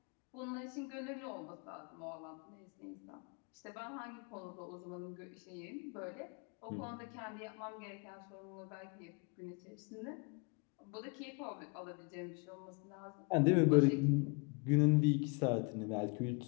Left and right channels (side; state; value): right; quieter; 32.8 dB